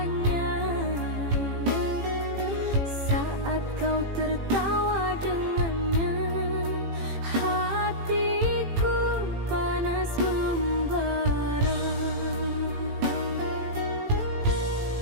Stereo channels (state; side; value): late; left; 18 ms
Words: saat kau tertawa dengannya. Hatiku panas membara.